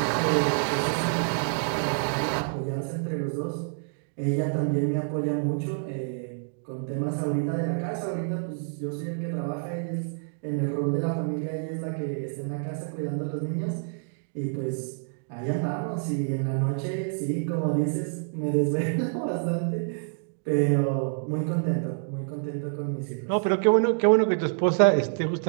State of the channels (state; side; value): silent; left; digital silence